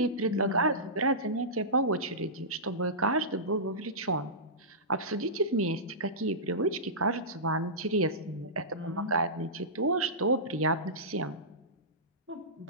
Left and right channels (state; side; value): normal; both; correlation -0.18